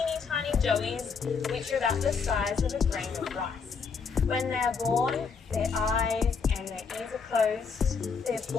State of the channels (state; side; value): quieter; right; 5.5 dB